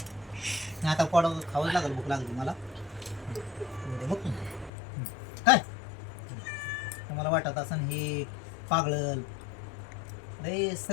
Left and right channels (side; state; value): right; drops out; at 4.7 s